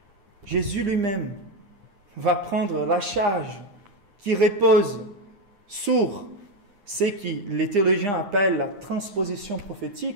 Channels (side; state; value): left; late; 9.8 ms